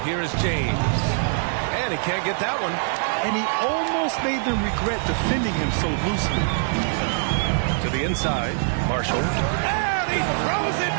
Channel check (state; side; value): silent; left; digital silence